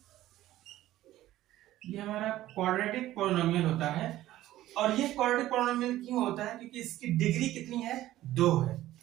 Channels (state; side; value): quieter; left; 14.7 dB